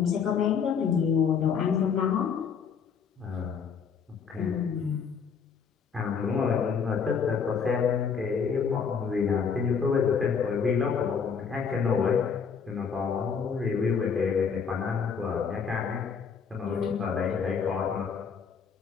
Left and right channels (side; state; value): right; quieter; 6.3 dB